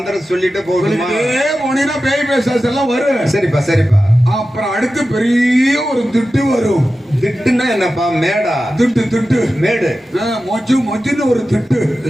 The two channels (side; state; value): both; normal; correlation 0.93